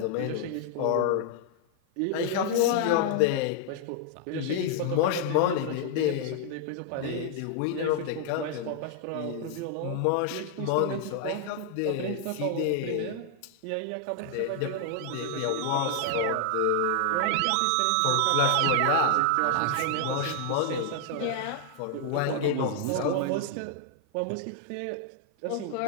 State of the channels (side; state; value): both; different; correlation -0.01